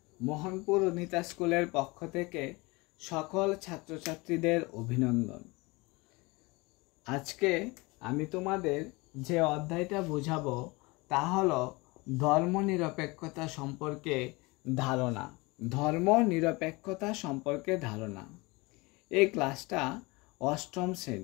মোহনপুর অনিতা স্কুলের পক্ষ থেকে সকল ছাত্রছাত্রীদের অভিনন্দন। আজকে আমি তোমাদের যে অধ্যায়টা বোঝাবো তা হলো ধর্মনিরপেক্ষতা সম্পর্কে ধারণা। ধর্মনিরপেক্ষতা সম্পর্কে ধারণা। এই ক্লাসটা অষ্টম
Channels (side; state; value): right; quieter; 24.7 dB